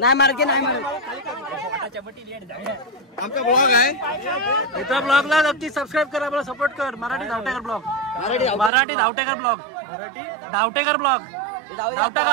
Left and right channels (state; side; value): drops out; left; at 8.7 s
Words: मारके नाही मारू आमचा ब्लॉग आहे इथं ब्लॉगला नक्की सबस्क्राईब कर आपला सपोर्ट कर Marathi Dhavtekar blog Marathi Dhavtekar blog Dhavtekar blog